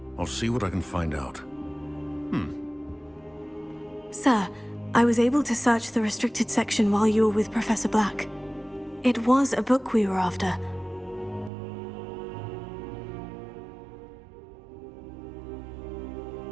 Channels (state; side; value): drops out; left; at 11.5 s